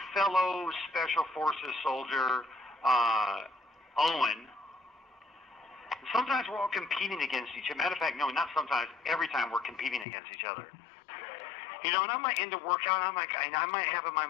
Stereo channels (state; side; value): drops out; right; at 10.1 s